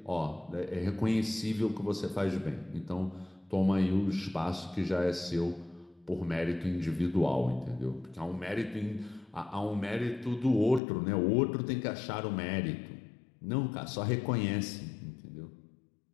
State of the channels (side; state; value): right; drops out; at 10.8 s